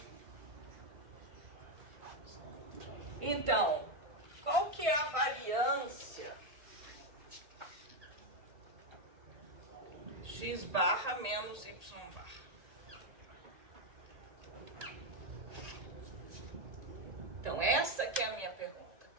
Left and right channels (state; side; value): late; left; 1.9 ms